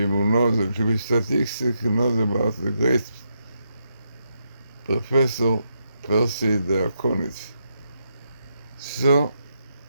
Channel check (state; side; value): inverted; both; correlation -0.82